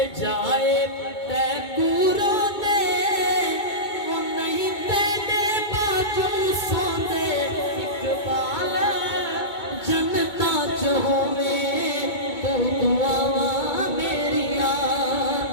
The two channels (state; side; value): late; right; 2.2 ms